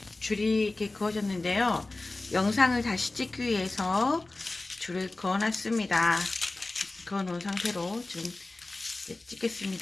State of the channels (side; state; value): right; quieter; 3.1 dB